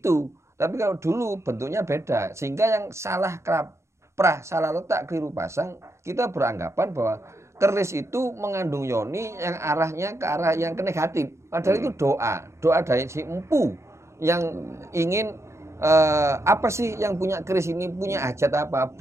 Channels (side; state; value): left; late; 0.14 ms